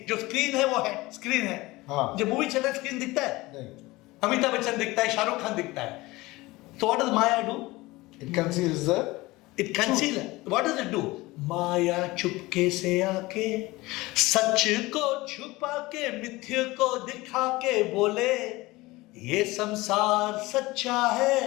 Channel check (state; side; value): quieter; right; 20.6 dB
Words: जो screen है वो है, screen है. हाँ. जब मूवी चल रहा है screen दिखता है. नहीं. अमिताभ बच्चन दिखता है, शाहरुख खान दिखता है. So what does Maya do? It conceals the. It conceals. What does it do? माया चुपके से आके सच को छुपा के मिथ्य को दिखा के बोले ये संसार सच्चा है